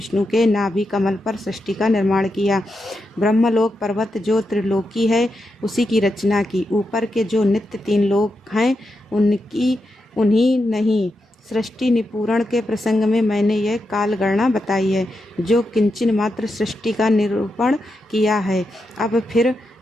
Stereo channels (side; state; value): both; normal; correlation 0.86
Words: के नाभि कमल पर सृष्टि का निर्माण किया। ब्रह्मलोक पर्वत जो त्रिलोकी है, उसी की रचना की। ऊपर के जो नित्य तीन लोक हैं, उन्हीं नहीं। सृष्टि निपूरण के प्रसंग में मैंने यह कालगणना बताई है, जो किंचन मात्र सृष्टि का निरूपण किया है। अब फिर